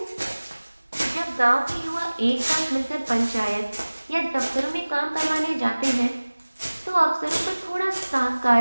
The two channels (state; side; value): inverted; both; correlation -1.00